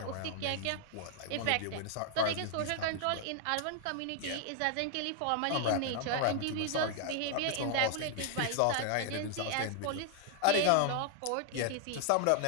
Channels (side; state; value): both; different; correlation 0.00